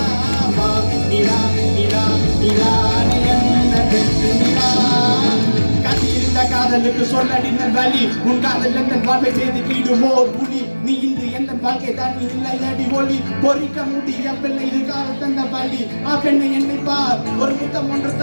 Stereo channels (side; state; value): both; inverted; correlation -1.00